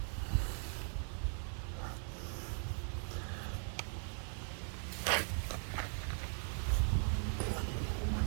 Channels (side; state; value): left; silent; 51 dB below the other